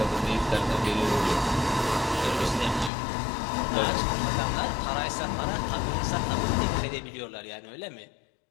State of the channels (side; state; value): right; drops out; at 2.9 s